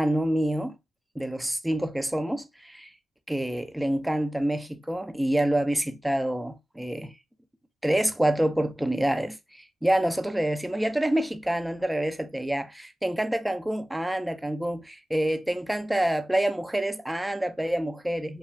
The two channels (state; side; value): normal; both; correlation 0.97